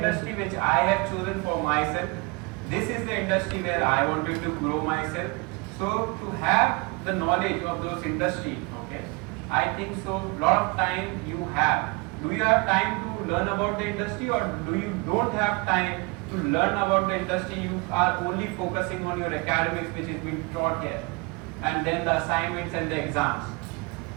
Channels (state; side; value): quieter; left; 28.0 dB